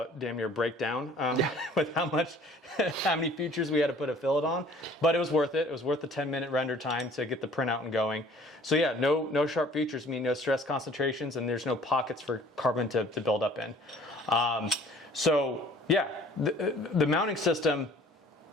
near break down with how many features we had to put a fillet on. But it was worth it. It was worth the 10-minute render time to get the printout and going. So yeah, no sharp features mean no stress concentrations, and there's no pockets for carbon to build up in. So yeah, the mounting system,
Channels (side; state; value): both; normal; correlation 0.52